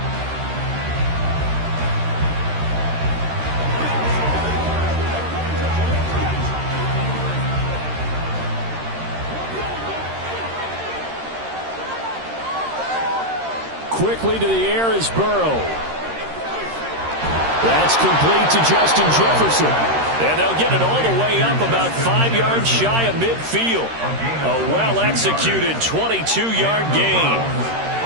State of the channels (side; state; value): left; late; 13 ms